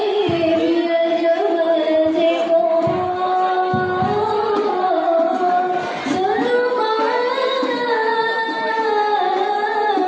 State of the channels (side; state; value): both; identical; correlation 1.00